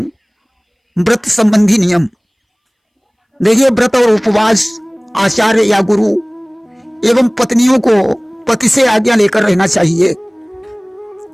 व्रत संबंधी नियम। देखिए, व्रत और उपवास आचार्य या गुरु एवं पत्नियों को पति से आज्ञा लेकर रहना चाहिए।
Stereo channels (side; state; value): both; identical; correlation 1.00